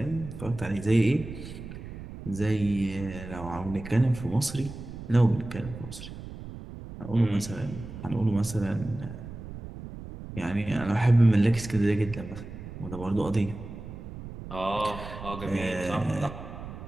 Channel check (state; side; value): noise; right; rumble, 11 dB below the sound